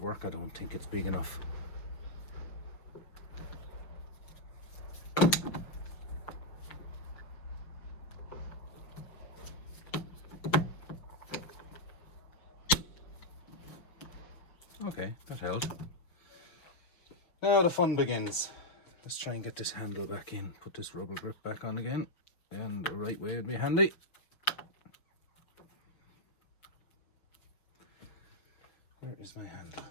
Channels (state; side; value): late; right; 5.9 ms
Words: work? I don't think it's big enough. Okay, that held. Now the fun begins. Let's try and get this handle back in, put this rubber grip back on again, and the right way would be handy. Where is my handle?